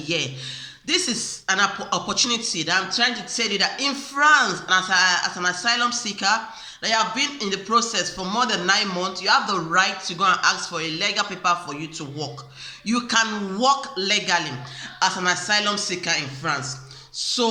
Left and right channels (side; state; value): both; identical; correlation 1.00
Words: This is an opportunity that I'm trying to tell you, that in France, as an asylum seeker, that you have been in the process for more than 9 months, you have the right to go and ask for a legal paper for you to work. You can work legally as an asylum seeker in France.